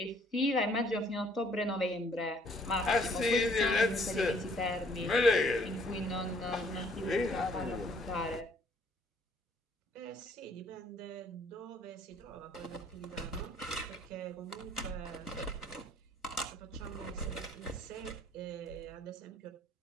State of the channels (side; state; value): both; normal; correlation 0.62